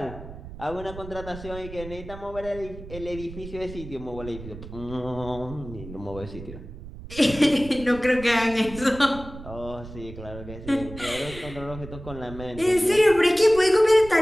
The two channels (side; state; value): right; noise; rumble, 13 dB below the sound